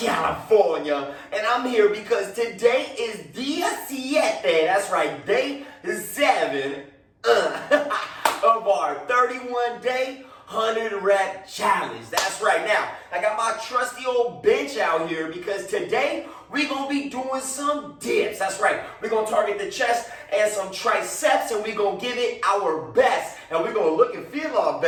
And I'm here because today is Día 7, that's right, day 7 of our 31-day 100-rep challenge. That's right. Now, I got my trusty old bench out here because today we're going to be doing some dips. That's right. We're going to target the chest and some triceps, and we're going to give it our best. And we're going to look and feel our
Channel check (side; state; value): both; identical; correlation 1.00